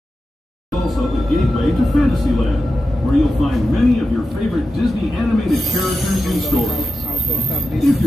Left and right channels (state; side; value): normal; both; correlation 0.91